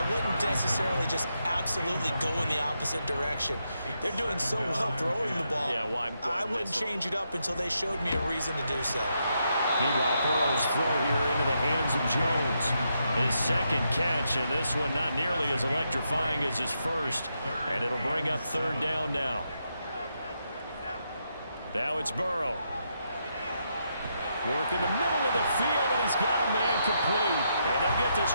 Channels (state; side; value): inverted; both; correlation -0.81